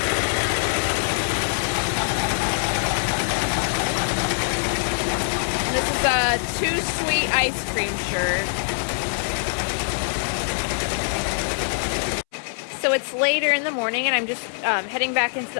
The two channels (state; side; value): silent; right; 63 dB below the other